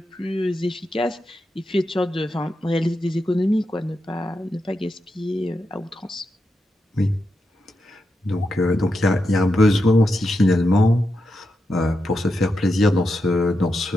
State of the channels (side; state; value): both; normal; correlation 0.86